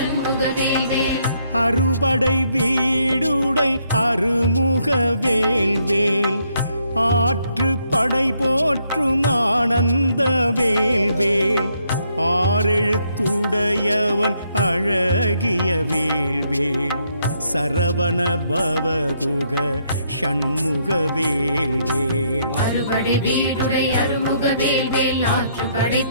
வேல்வேல் அறுபடை வீடுடை அருமுக வேல்வேல் ஆற்று படை போற்றும் ஆனந்த வேல்வேல் ஆறெழுத்துடையவன் அழகிய வேல்வேல் சரவண பவகுக ஷண்முக வேல்வேல் அறுபடை வீடுடை அருமுக வேல்வேல் ஆற்று படை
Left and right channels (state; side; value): inverted; both; correlation -0.73